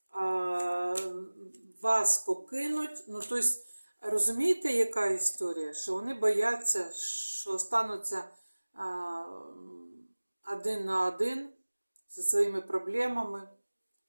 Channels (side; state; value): both; inverted; correlation -1.00